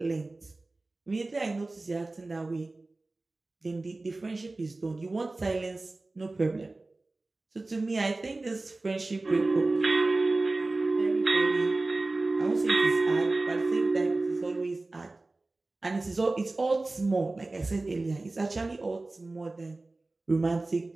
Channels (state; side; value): quieter; left; 3.1 dB